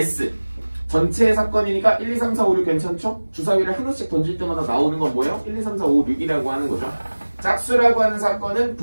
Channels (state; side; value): inverted; both; correlation -1.00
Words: 전체의 사건이니까 1, 2, 3, 4, 5, 6 괜찮죠? 주사위를 하나씩 던질 때마다 나오는 건 뭐예요? 1, 2, 3, 4, 5, 6이라고 하는 거죠. 짝수라고 하는 사건은